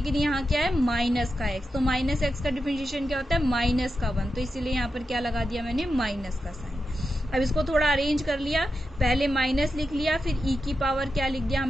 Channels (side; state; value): both; normal; correlation 0.89